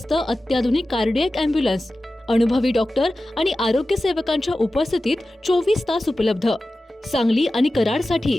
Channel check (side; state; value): both; normal; correlation 0.95